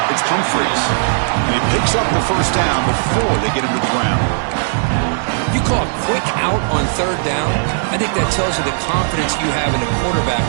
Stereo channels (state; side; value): silent; left; digital silence